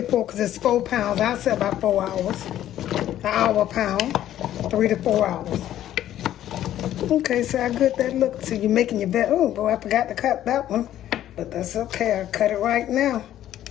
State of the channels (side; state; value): right; quieter; 12.2 dB